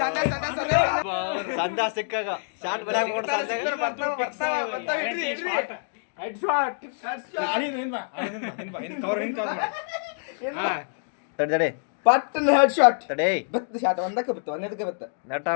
ಸಂದ ಸಿಕ್ಕಾಗ ಶಾಟ್ ಬರಕ್ ತಡೆ ಪಟ್ಟನ ಹೆಡ್ ಶಾಟ್ ತಡೆ ಬತ್ತ ಶಾಟ್ ಒಂದಕ್ಕೆ ಬತ್ತ ಒಂದಕ್ಕೆ ಬತ್ತ ನೆಟ್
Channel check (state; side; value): silent; right; digital silence